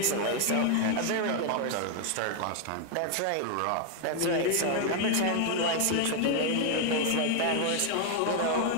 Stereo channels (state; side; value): different; both; correlation 0.00